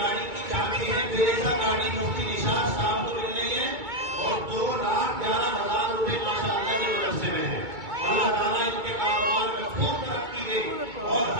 की चाबी है, फिरेजा गाड़ी मुफ्ती निशात साहब को मिल रही है और 2,11,000 रुपए माशाअल्लाह के मदरसे में है। अल्लाह ताला इनके कारोबार में खूब तरक्की दे और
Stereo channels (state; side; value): late; left; 2.2 ms